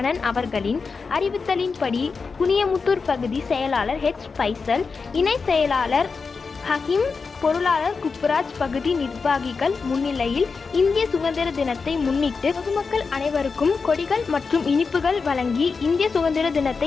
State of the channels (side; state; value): right; quieter; 4.8 dB